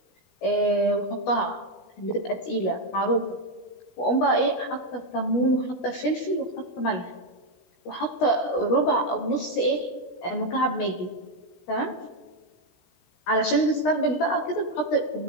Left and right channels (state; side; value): late; right; 16 ms